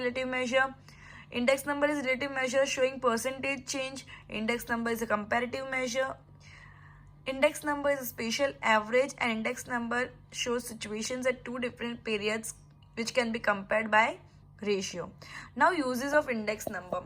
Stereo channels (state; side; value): identical; both; correlation 1.00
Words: measure, Index number is relative measure showing percentage change. Index number is a comparative measure. Index number is a spatial average, and index number shows situations at two different periods which can be compared by ratio. Now uses of index